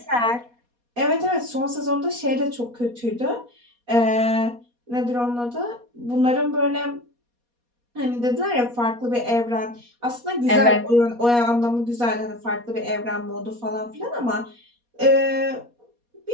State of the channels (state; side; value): late; left; 4.2 ms